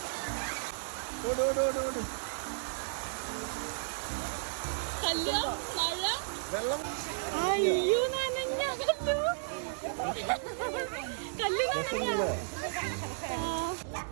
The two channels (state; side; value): silent; left; digital silence